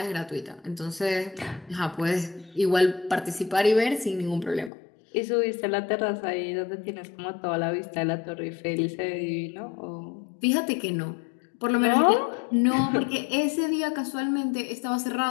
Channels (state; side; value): drops out; right; at 4.7 s